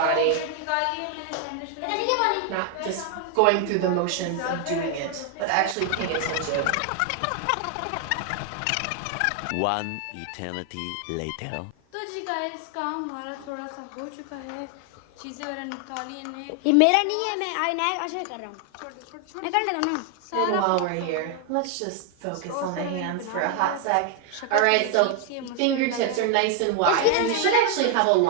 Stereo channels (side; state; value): both; different; correlation 0.00